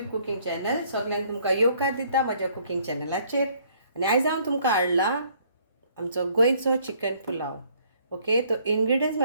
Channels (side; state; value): both; inverted; correlation -0.63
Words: cooking channel. सगळ्यांक तुमकां येवकार दिता म्हज्या कुकिंग चॅनलाचेर. आनी आयज हांव तुमकां हाडला आमचो गोंयचो चिकन पुलाव. ओके, तो इंग्रेडियंट्स